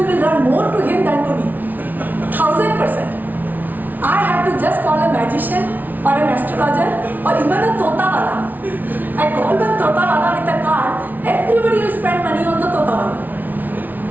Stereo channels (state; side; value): late; left; 0.082 ms